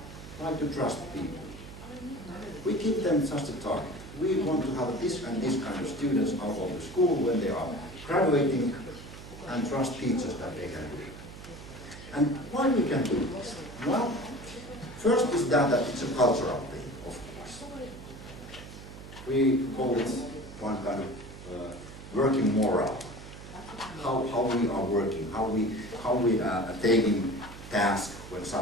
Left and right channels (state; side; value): noise; right; hum, 14 dB below the sound